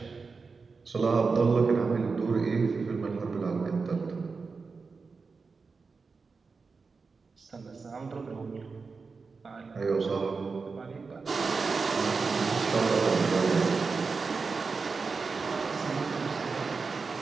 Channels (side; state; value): left; quieter; 4.6 dB